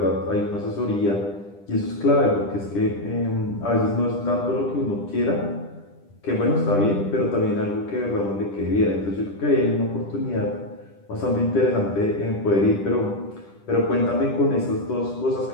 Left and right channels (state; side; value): late; right; 10 ms